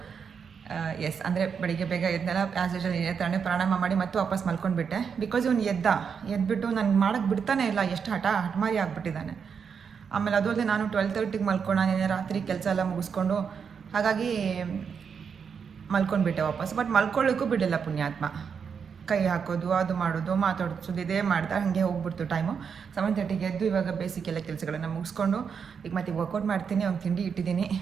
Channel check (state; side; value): quieter; left; 6.5 dB